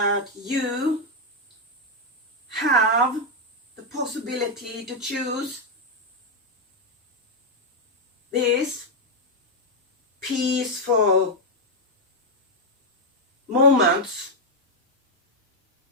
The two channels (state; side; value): normal; both; correlation 0.00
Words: you have the possibility to choose this peaceful moments